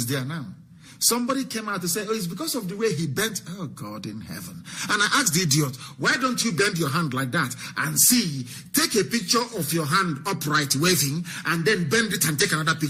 there now. Somebody came out to say, oh, it's because of the way he bent. Oh, God in heaven. And I asked the idiot, why don't you bend your hand like that and see, take a picture of your hand upright waving and then bend it and take another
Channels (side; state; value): both; identical; correlation 1.00